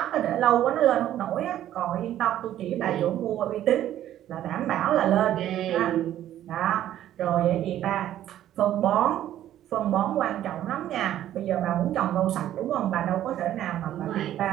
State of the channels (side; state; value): left; quieter; 12.2 dB